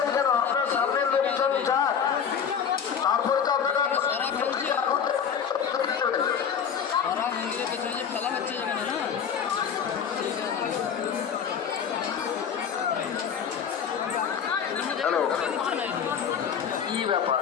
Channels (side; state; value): right; quieter; 7.5 dB